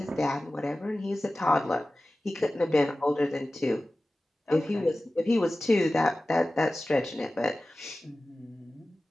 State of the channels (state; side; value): normal; both; correlation 0.96